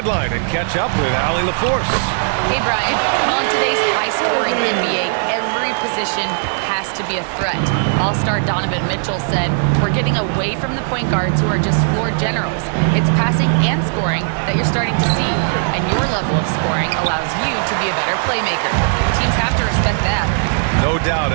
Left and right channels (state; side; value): silent; left; digital silence